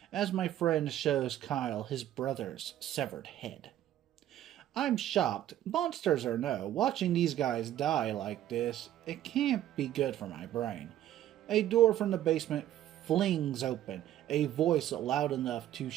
as my friend shows Kyle his brother's severed head. I'm shocked, monsters or no, watching these guys die like this, it can't be good for my brain. A door from the basement flings open, a voice loud enough to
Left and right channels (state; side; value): quieter; left; 12.3 dB